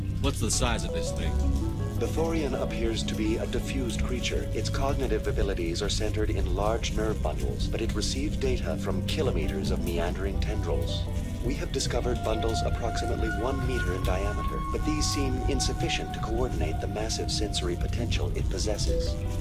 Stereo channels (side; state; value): both; identical; correlation 1.00